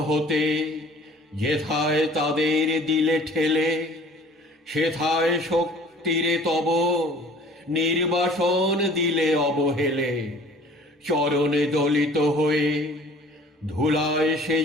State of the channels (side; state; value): both; normal; correlation 0.49